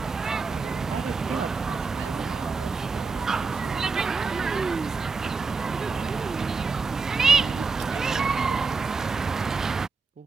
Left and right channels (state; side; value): quieter; left; 4.6 dB